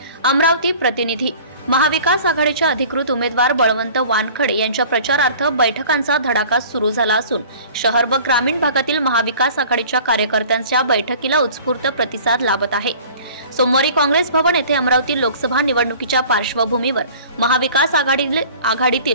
अमरावती प्रतिनिधी। महाविकास आघाडीचे अधिकृत उमेदवार बळवंत वानखडे यांच्या प्रचारार्थ बैठकांचा धडाका सुरू झाला असून शहर व ग्रामीण भागातील महाविकास आघाडीच्या कार्यकर्त्यांच्या बैठकीला उत्स्फूर्त प्रतिसाद लाभत आहे। सोमवारी काँग्रेस भवन येथे अमरावती लोकसभा निवडणुकीच्या पार्श्वभूमीवर महाविकास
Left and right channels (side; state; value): both; inverted; correlation -0.46